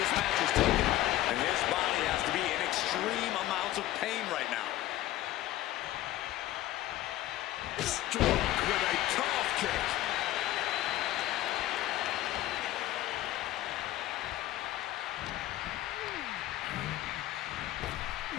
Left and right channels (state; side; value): quieter; right; 14.9 dB